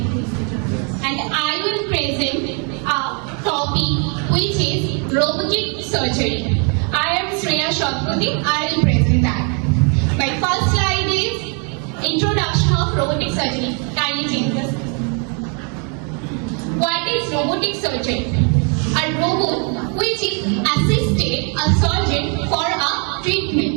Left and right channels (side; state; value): left; quieter; 37.4 dB